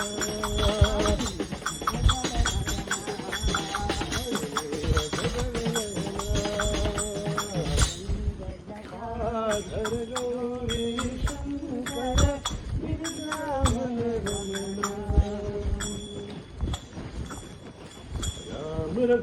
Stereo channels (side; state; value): both; identical; correlation 1.00